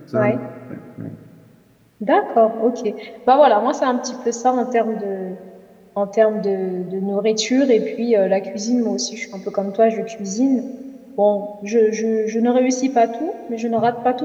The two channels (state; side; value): identical; both; correlation 1.00